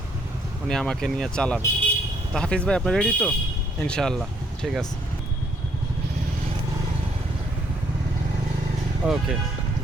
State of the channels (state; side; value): normal; both; correlation 0.68